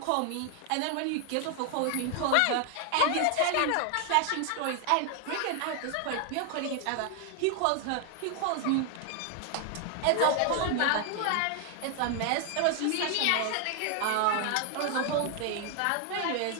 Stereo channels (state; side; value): different; both; correlation 0.00